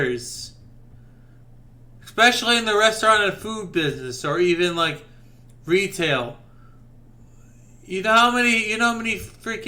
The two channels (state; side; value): identical; both; correlation 1.00